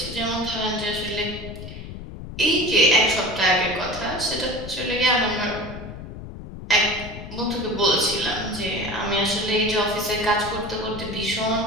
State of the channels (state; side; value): noise; left; rumble, 11 dB below the sound